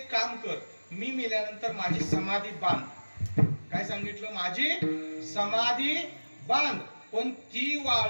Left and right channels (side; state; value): both; inverted; correlation -1.00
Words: काम कर, मी मेल्यानंतर माझी समाधी बांध. काय सांगितलं? माझी समाधी बांध, पण ती